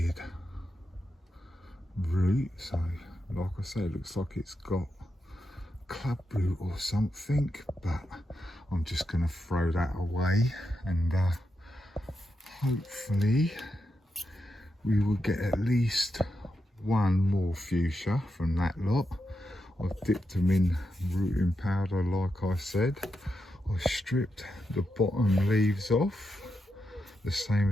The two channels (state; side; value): normal; both; correlation 0.86